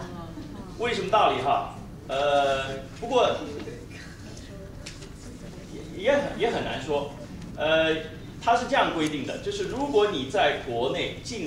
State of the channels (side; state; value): both; identical; correlation 1.00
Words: 为什么道理哈？不过也很难说。它是这样规定的，就是如果你在国内